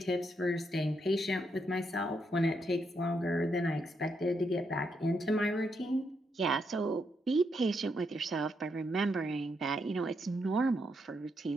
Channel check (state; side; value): normal; both; correlation 0.79